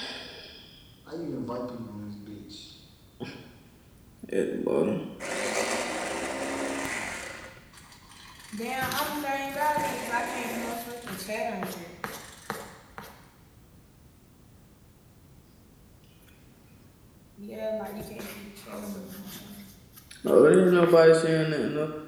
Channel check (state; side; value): identical; both; correlation 1.00